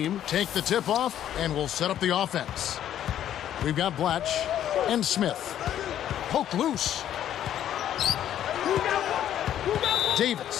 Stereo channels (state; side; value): quieter; right; 10.9 dB